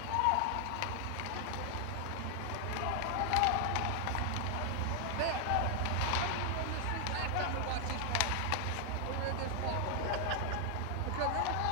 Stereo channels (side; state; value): both; different; correlation 0.00